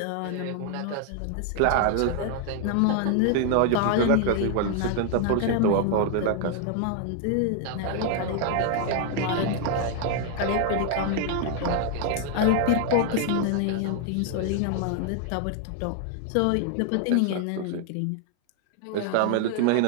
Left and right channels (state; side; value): different; both; correlation 0.00